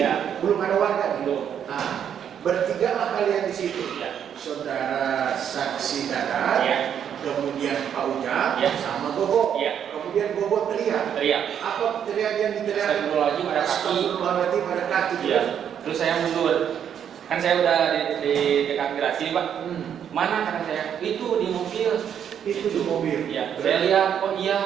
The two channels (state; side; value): quieter; left; 8.8 dB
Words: Belum ada warga. Belum. Nah, bertiga lah kalian di situ. Ya. Saudara saksi Dadan, Ya. kemudian Pak Ujang, Ya. sama Gogo. Ya. Kemudian Gogo teriak. Apa teriak yang diteriak? Astagfirullahaladzim, ada kaki. Astagfirullahaladzim, ada kaki. Iya. Terus saya mundur. Kan saya udah di dekat garasi Pak. Mana kata saya? Itu di mobil. Itu di mobil. Iya. Saya lihat, oh iya.